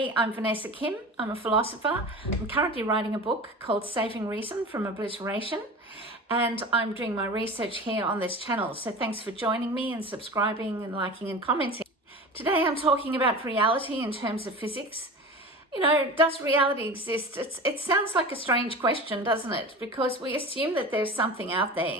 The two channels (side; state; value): both; normal; correlation 0.33